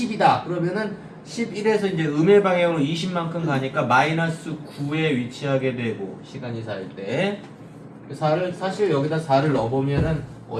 그러면은 11에서 이제 음의 방향으로 20만큼 가니까 마이너스 9에 위치하게 되고 시간이 4일 때 4를 사실 여기다 4를 넣어보면은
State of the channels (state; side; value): identical; both; correlation 1.00